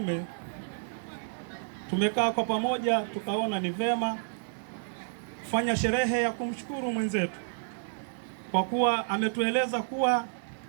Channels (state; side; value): silent; left; digital silence